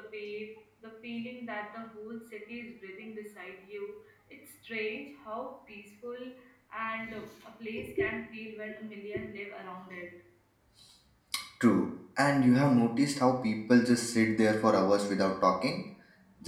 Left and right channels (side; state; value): both; identical; correlation 1.00